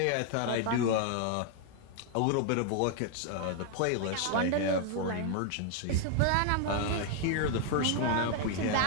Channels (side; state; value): both; different; correlation 0.00